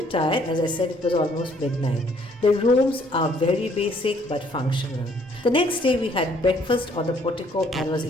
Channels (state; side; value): normal; both; correlation 0.64